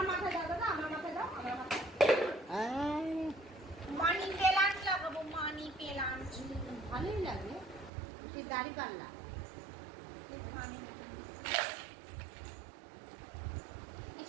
মাথায় দাও দাদা, আমার মাথায় দাও, আমার মাথায়। মানি প্লান্ট লাগাবো, মানি প্লান্ট। ভালোই লাগে সেই গাড়ি পাল্লা।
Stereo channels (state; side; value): drops out; left; at 7.9 s